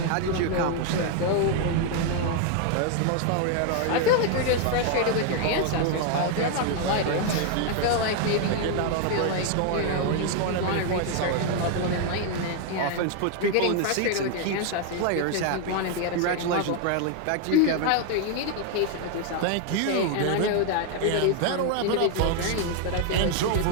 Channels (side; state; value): both; different; correlation 0.00